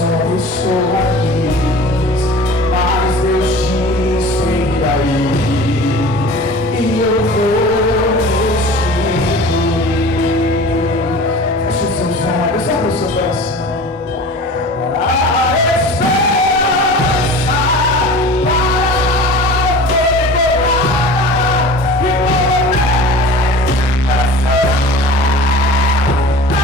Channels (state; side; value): normal; both; correlation 0.39